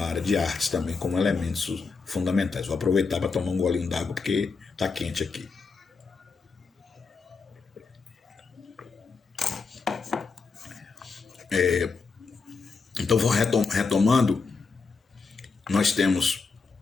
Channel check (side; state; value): right; quieter; 4.7 dB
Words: área de artes também, como elementos fundamentais. Vou aproveitar para tomar um golinho d'água porque está quente aqui. Então, retomando, nós